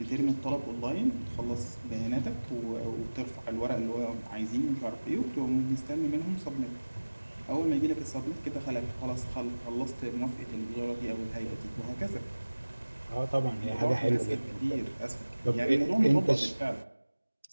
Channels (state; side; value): inverted; both; correlation -1.00